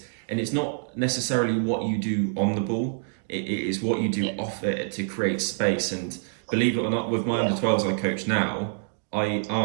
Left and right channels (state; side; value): silent; left; digital silence